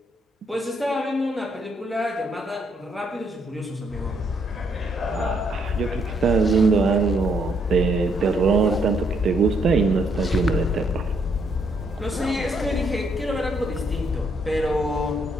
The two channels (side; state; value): both; normal; correlation 0.72